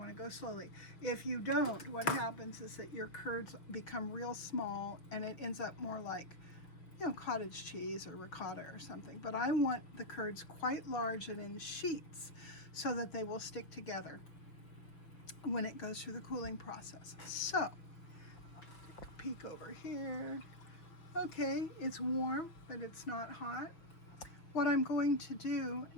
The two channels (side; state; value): right; late; 6.0 ms